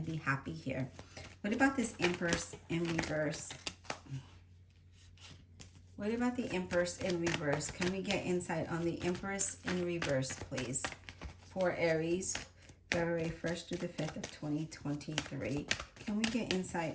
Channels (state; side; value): identical; both; correlation 1.00